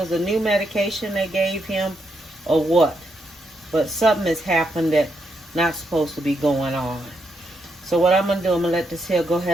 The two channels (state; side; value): normal; both; correlation 0.80